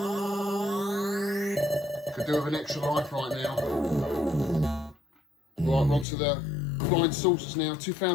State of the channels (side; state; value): right; drops out; at 6.1 s